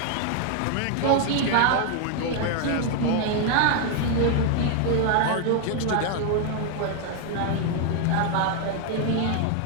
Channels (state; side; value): different; both; correlation 0.00